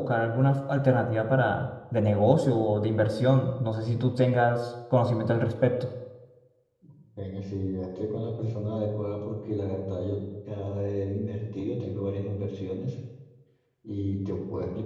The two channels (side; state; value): both; identical; correlation 1.00